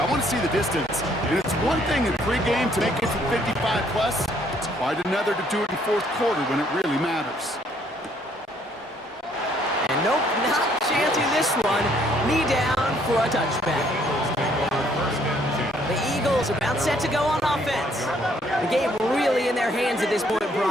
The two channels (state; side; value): normal; both; correlation 0.66